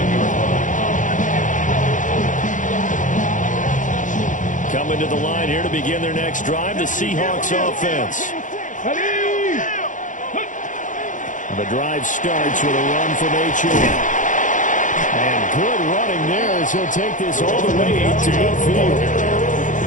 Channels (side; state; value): right; late; 0.37 ms